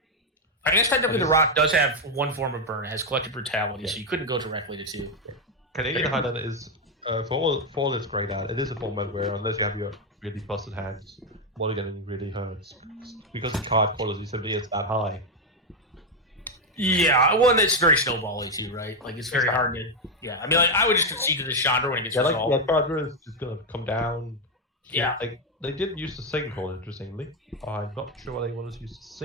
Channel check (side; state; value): both; normal; correlation 0.05